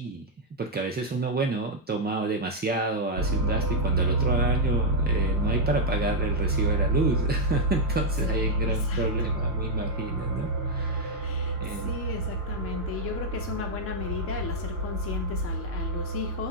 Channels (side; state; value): both; normal; correlation -0.02